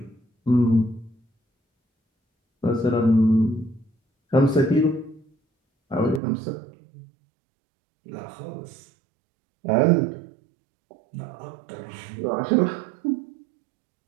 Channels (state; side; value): drops out; left; at 6.2 s